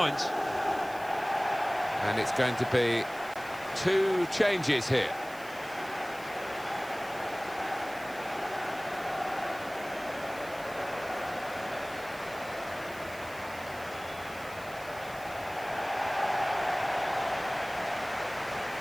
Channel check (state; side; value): noise; right; hiss, 19 dB below the sound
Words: And it's going to be 2 changes here.